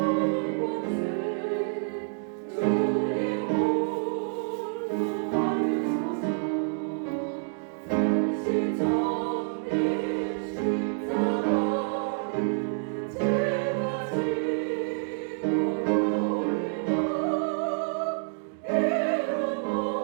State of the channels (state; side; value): silent; left; 59 dB below the other